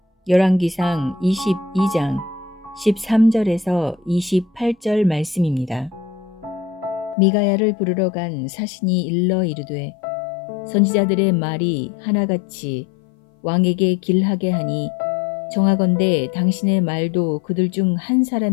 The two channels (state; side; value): drops out; right; at 7.2 s